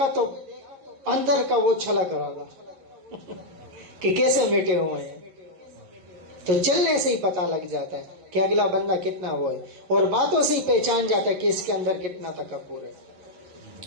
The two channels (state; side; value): late; left; 11 ms